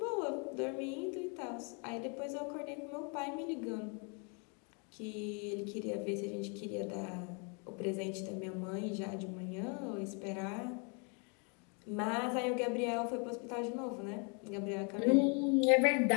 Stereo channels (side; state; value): right; quieter; 36.5 dB